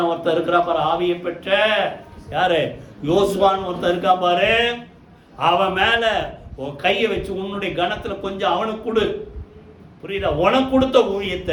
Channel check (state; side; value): identical; both; correlation 1.00